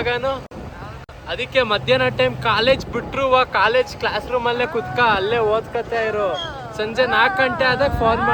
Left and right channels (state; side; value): identical; both; correlation 1.00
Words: ಗಾನು? ಅದಕ್ಕೆ ಮಧ್ಯಾಹ್ನ ಟೈಮ್ ಕಾಲೇಜ್ ಬಿಟ್ರು ಕಾಲೇಜ್ ಕ್ಲಾಸ್ ರೂಮಲ್ಲೇ ಕುತ್ಕ ಅಲ್ಲೇ ಓದ್ಕತಾ ಇರು. ಸಂಜೆ 4 ಗಂಟೆ ಆದಾಗ ಫೋನ್